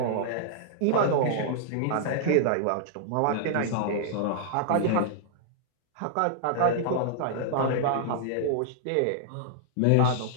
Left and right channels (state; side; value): different; both; correlation -0.01